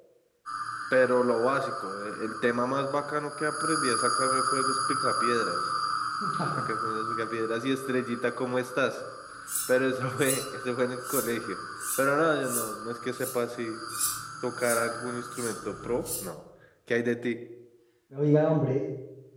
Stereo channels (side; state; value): both; identical; correlation 1.00